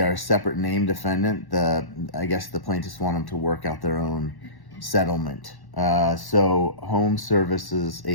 a separate name defendant, I guess the plaintiffs want them to work out their own settlement. So Home Services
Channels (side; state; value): right; late; 1.1 ms